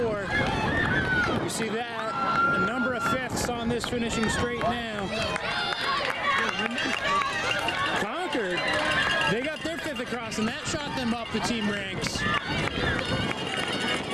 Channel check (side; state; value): both; identical; correlation 1.00